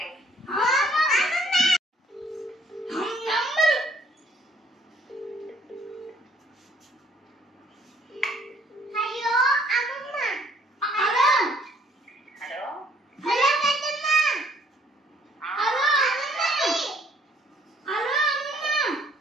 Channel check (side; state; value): both; normal; correlation 0.62